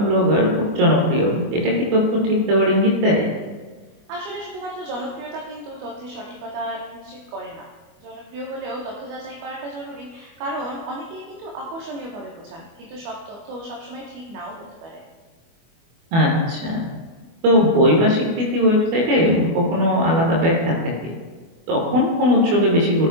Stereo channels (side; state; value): left; late; 24 ms